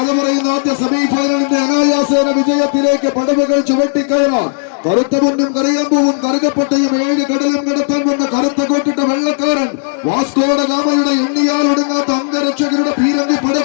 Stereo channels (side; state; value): right; silent; digital silence